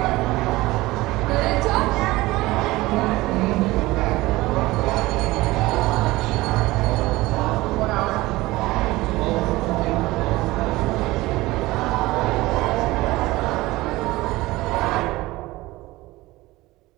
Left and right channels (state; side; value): quieter; left; 19.4 dB